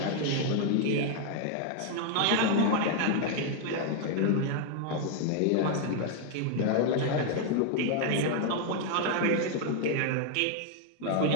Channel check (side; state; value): both; different; correlation 0.00